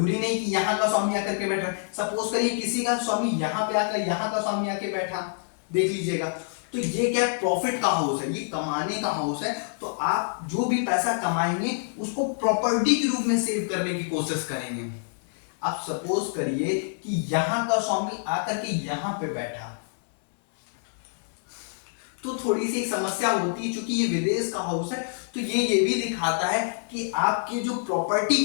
नहीं कि यहाँ का स्वामी आकर के बैठा, सपोज करिए किसी का स्वामी यहाँ पे आकर यहाँ का स्वामी आके बैठा, देख लीजिएगा, तो ये क्या है, प्रॉफिट का हाउस है, ये कमाने का हाउस है। तो आप जो भी पैसा कमाएंगे उसको प्रॉपर्टी के रूप में सेव करने की कोशिश करेंगे। आप सपोज करिए कि यहां का स्वामी आकर के यहां पे बैठा, तो थोड़ी सी एक समस्या होती है, क्योंकि ये विदेश का हाउस है, तो ये भी दिखाता है कि आपके जो प्रॉपर्टी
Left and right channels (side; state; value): right; silent; digital silence